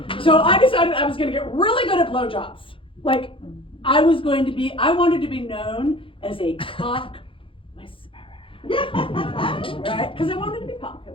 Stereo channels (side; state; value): right; late; 0.25 ms